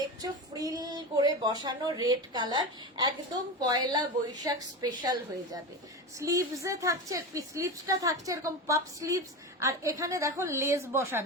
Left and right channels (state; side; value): normal; both; correlation 0.22